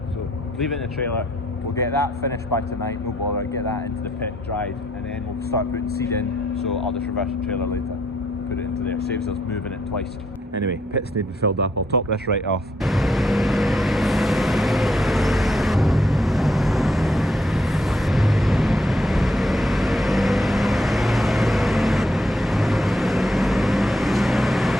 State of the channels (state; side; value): normal; both; correlation 0.73